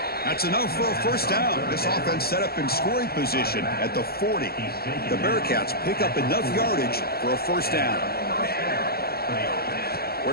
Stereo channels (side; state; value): right; late; 0.45 ms